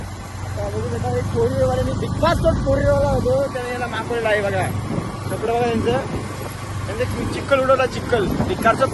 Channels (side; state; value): both; identical; correlation 1.00